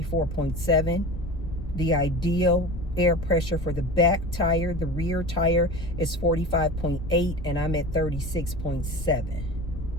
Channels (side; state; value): left; noise; rumble, 10 dB below the sound